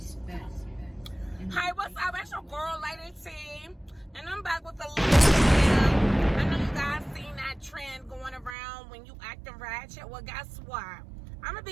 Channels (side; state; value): left; drops out; at 8.6 s